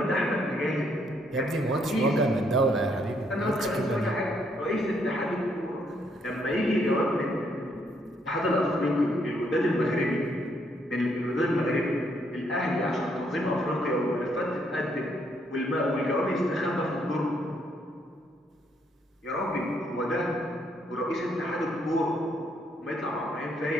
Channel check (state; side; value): normal; both; correlation 0.72